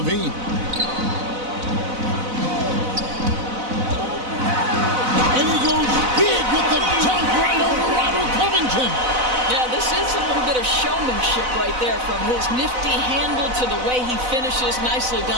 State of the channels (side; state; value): left; late; 4.0 ms